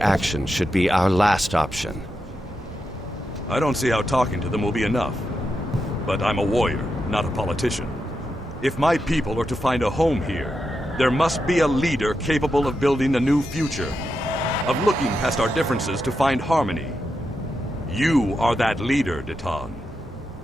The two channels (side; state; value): both; normal; correlation 0.86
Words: should be our last option. I don't see how talking to them will be enough. But I'm a warrior, not a politician. If my people are to find a home here, there must be a leader capable of building a new future, of looking past our differences to find harmony. You are that leader, Deton.